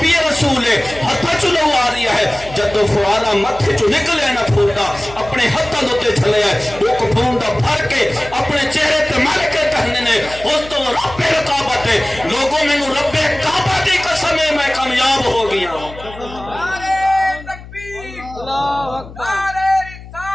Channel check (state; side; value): noise; left; hum, 16 dB below the sound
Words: رسول ہے ہتھا چلو آ رہی ہے جدو فوارا متھے چو نکلے نا پھوٹا اپنے ہتھاں دوتے چلے ہے وہ کپھون دا بھر کے اپنے چہرے تے مل کے کہنے نے فست و رب الکعبہ تے لوگوں میں رب کعبہ دی قسم ہے میں کامیاب ہو گیا ہوں